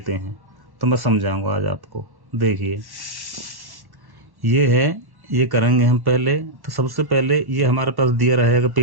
हैं। तो मैं समझाऊंगा आज आपको। देखिए ये है, ये करेंगे हम पहले। तो सबसे पहले ये हमारे पास दिया रहेगा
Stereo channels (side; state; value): left; late; 1.1 ms